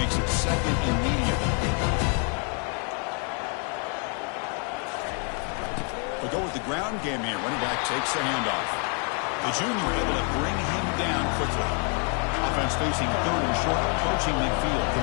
it second and medium. We go with the ground game here. Running back takes the handoff. The junior able to bring him down quickly. Offense facing third and short, approaching midfield.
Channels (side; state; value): right; quieter; 39.2 dB